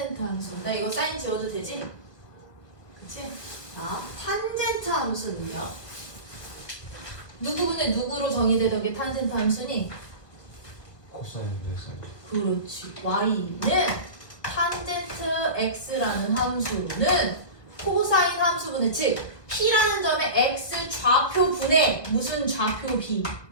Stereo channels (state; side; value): late; right; 1.7 ms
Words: 함수. 나 이거 사인 지워도 되지? 그치? 자, 탄젠트 함수는요. 누구분의 누구로 정의되던 게 탄젠트 함수니? 코사인 됐어요. 그렇지. y는 탄젠트 x라는 함수는 코사인 함수분의 즉 p라는 점의 x 좌표분의 무슨 좌표 b?